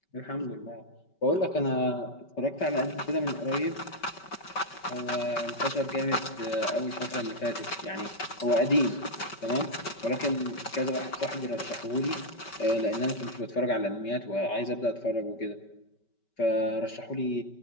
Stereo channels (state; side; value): late; right; 5.2 ms